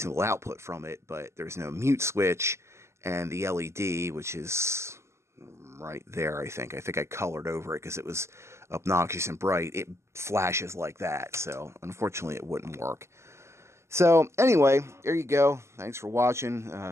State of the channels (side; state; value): left; late; 0.13 ms